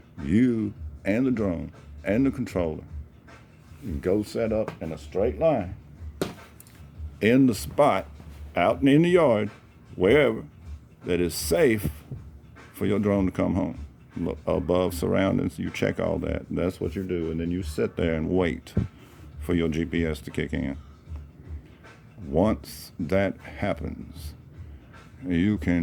You and the drone and the controller go set up in a straight line in the spot, out in the yard, wherever, that is safe for your drone to come home. Look above surroundings, you check all that. That's what you do, and then you sit there and wait for your GPS to kick in. Once that happens, you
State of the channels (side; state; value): both; identical; correlation 1.00